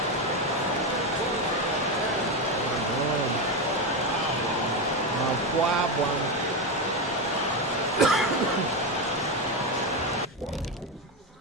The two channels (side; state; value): both; normal; correlation 0.11